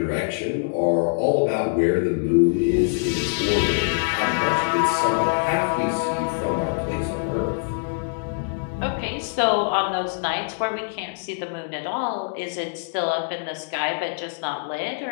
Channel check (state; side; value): silent; right; digital silence